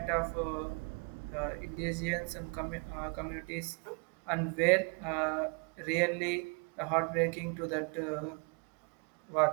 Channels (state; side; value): quieter; left; 35.9 dB